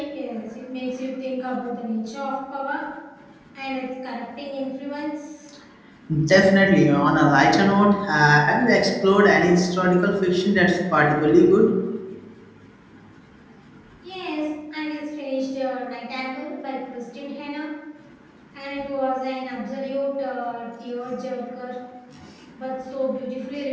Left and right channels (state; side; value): identical; both; correlation 1.00